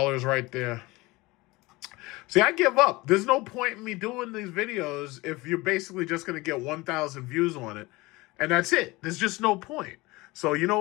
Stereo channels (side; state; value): right; quieter; 21.9 dB